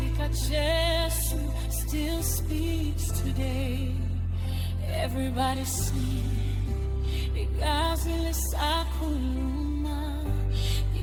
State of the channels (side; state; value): both; identical; correlation 1.00